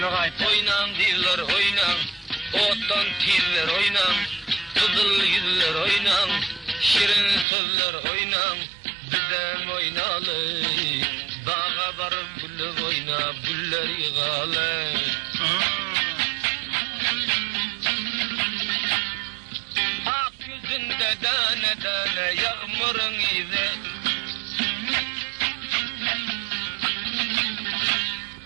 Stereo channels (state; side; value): drops out; left; at 7.5 s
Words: kayıt. Oynan kızlar oynan, ottan tirler oynan, kızıl yüzler oynan, şirin sözler oynan, bizden oynalı. Bağa varıp gülü oynap güller yığalı. Ak yüzünde tane tane yağmurun izi.